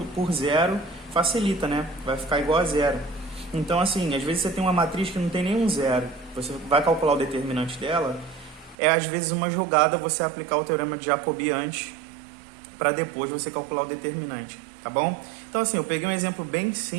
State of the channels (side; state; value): left; drops out; at 8.8 s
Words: zero, facilita, né? Vai ficar igual a zero. Então, assim, às vezes você tem uma matriz que não tem nenhum zero. Você vai calcular o determinante dela. É, às vezes, uma jogada você aplicar o teorema de Jacobi antes, para depois você calcular o determinante, tá bom? Então, assim, eu peguei um exemplo bem